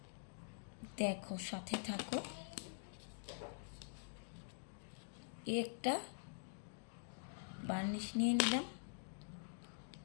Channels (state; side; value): silent; right; digital silence